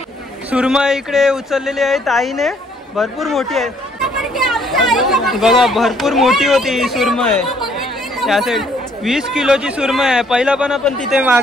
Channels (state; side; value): normal; both; correlation 0.65